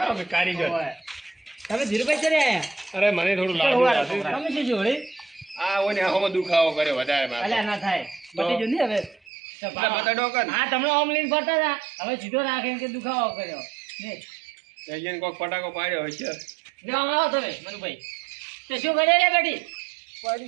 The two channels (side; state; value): left; drops out; at 9.2 s